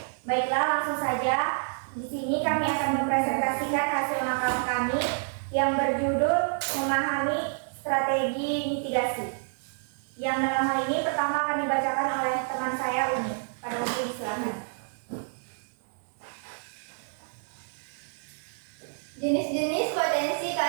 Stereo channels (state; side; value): silent; left; digital silence